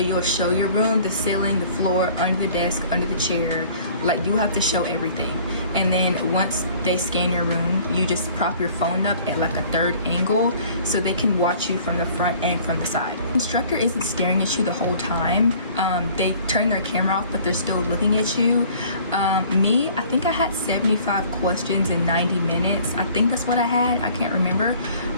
show your room, the ceiling, the floor, under the desk, under the chair. Like, you have to show everything. And then once they scan your room, you just prop your phone up at like a third angle so they can watch you from the front and from the side. The instructor isn't staring at you the whole time. They turn their camera off, but they're still looking at you. Me, I think I had 75 questions in 90 minutes. I think that's what I had. I can't remember.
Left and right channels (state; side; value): inverted; both; correlation -0.52